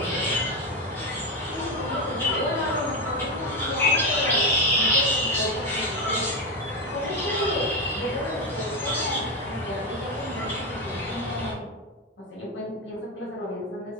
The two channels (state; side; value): normal; both; correlation 0.12